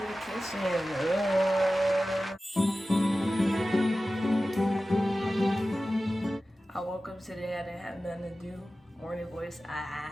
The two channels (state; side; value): normal; both; correlation 0.95